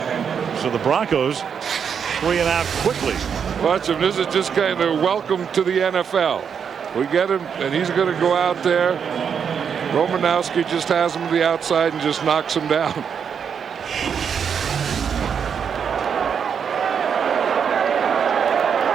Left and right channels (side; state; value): left; quieter; 7.1 dB